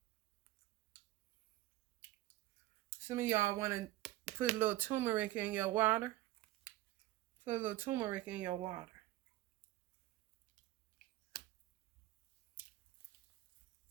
Some of y'all want to put a little turmeric in your water. Put a little turmeric in your water.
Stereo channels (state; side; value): quieter; left; 16.1 dB